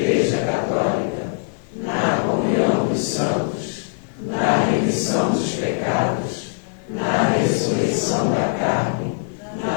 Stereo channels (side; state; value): right; silent; 56 dB below the other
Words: Católica, na comunhão dos santos, na remissão dos pecados, na ressurreição da carne,